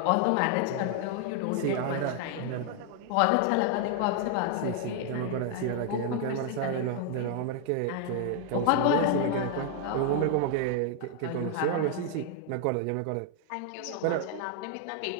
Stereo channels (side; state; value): both; different; correlation 0.00